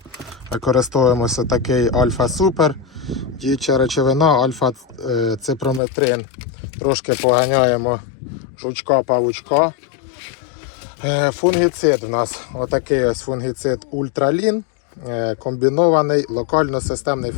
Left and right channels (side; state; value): right; drops out; at 5.8 s